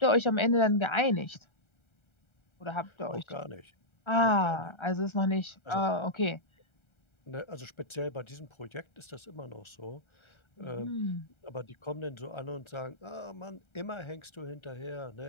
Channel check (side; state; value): right; late; 1.3 ms